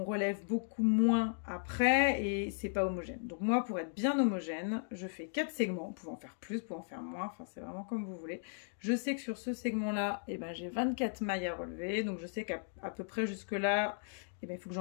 relève beaucoup moins après et c'est pas homogène. Donc moi, pour être bien homogène, je fais 4 segments. Vous pouvez en faire plus, vous pouvez en faire moins, enfin c'est vraiment comme vous voulez. Je sais que sur ce segment-là, j'ai 24 mailles à relever, donc je sais qu'à peu près jusque-là, il faut que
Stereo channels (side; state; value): right; silent; digital silence